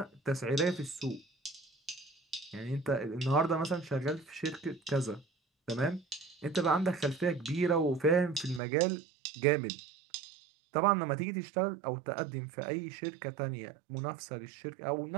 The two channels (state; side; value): drops out; left; at 8.6 s